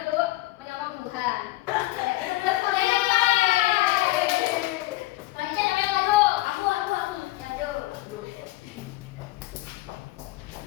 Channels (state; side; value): quieter; right; 18.8 dB